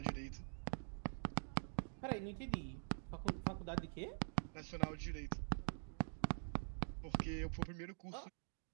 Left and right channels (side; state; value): left; silent; digital silence